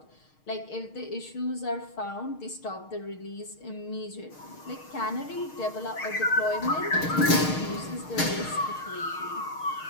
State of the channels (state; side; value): late; right; 6.5 ms